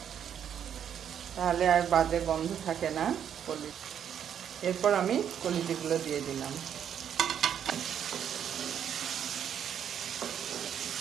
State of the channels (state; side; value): quieter; left; 8.9 dB